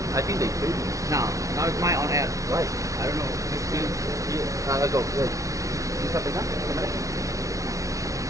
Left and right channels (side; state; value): left; late; 0.16 ms